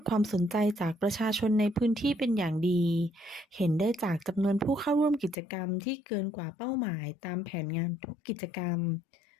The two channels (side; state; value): right; drops out; at 5.4 s